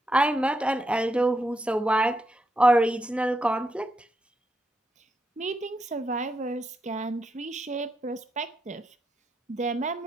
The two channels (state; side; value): normal; both; correlation 0.83